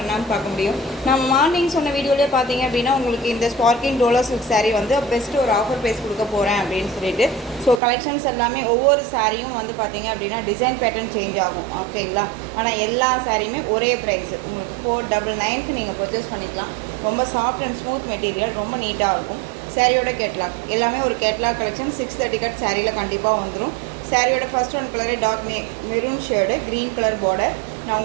பார்க்க முடியும். நம்ம மார்னிங் சொன்ன வீடியோலேயே பார்த்தீங்க அப்படின்னா உங்களுக்கு இந்த ஸ்பார்க்கிங் டோலோ சில்க் சாரீ வந்து பெஸ்ட்டு ஒரு ஆஃபர் ப்ரைஸ் கொடுக்க போகிறேன் அப்படின்னு சொல்லிட்டு. ஸோ கலெக்ஷன்ஸ் எல்லாமே ஒவ்வொரு சாரியும் வந்து பார்த்தீங்க அப்படின்னா டிசைன் பேட்டர்ன் சேஞ்ச் ஆகும், ஓகேங்களா. ஆனால் எல்லா சாரியுமே ஒரே ப்ரைஸ் உங்களுக்கு 499க்கு நீங்கள் பர்ச்சேஸ் பண்ணிக்கலாம். ரொம்ப சாஃப்ட் அண்ட் ஸ்மூத் மெட்டீரியல், ரொம்ப நீட்டாக இருக்கும். சாரியோட கேட்லாக் எல்லாமே ஒரு கேட்லாக் கலெக்ஷன் 630 கட் சாரியில் கண்டிப்பாக வந்துடும். சாரியோட first one colour dark maroon shade, green colour border. நான்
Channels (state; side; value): drops out; left; at 7.8 s